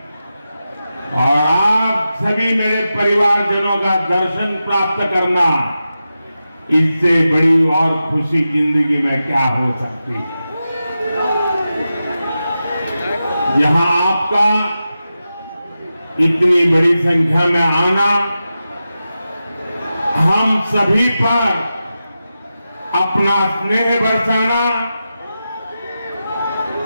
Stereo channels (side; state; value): both; inverted; correlation -0.91